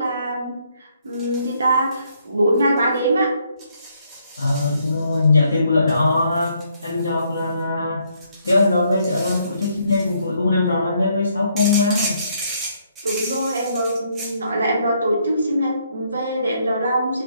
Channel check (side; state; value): both; inverted; correlation -0.71